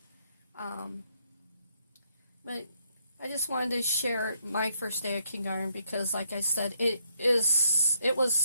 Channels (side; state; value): both; inverted; correlation -0.72